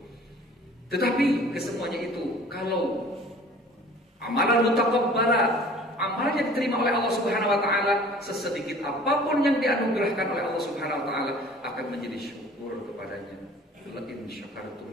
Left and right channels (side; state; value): both; normal; correlation 0.48